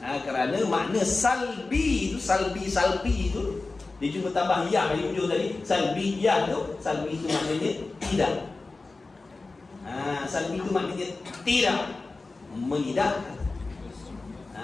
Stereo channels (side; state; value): right; quieter; 3.6 dB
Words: Kerana makna salbi itu, salbi itu dia cuma tambah ya di hujung tadi. Salbiyah tu, salbi itu maknanya tidak. Salbi itu maknanya tidak menidakkan.